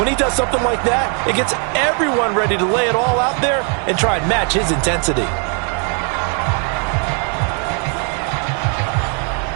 he does something like that, it gets everyone ready to lay it all out there and try and match his intensity.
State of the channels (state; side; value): quieter; left; 38.9 dB